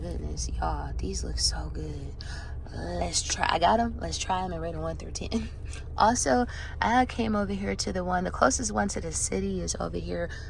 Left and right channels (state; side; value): identical; both; correlation 1.00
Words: y'all, these look so good. Let's try. I got them. Let's try them and rate them 1 through 10. Also, I came over here to the closest one to the city is over here